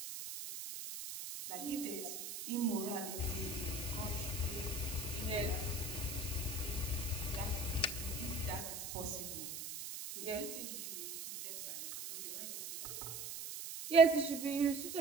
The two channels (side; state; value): right; noise; hiss, 7 dB below the sound